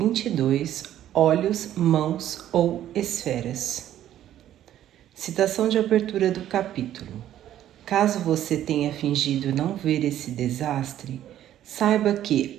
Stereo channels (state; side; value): quieter; left; 11.9 dB